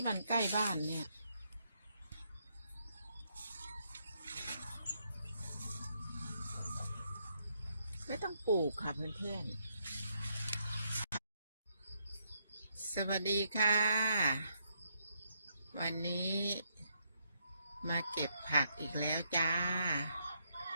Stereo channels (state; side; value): inverted; both; correlation -0.75